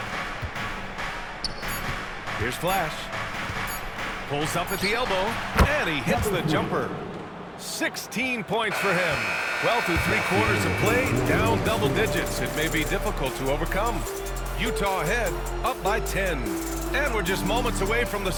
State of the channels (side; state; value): both; identical; correlation 1.00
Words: Here's Flash. Pulls up at the elbow, and he hits the jumper. 16 points for him. Well, through 3 quarters of play, down double digits. It may be difficult to overcome. Utah ahead, up by 10. And we're just moments away from the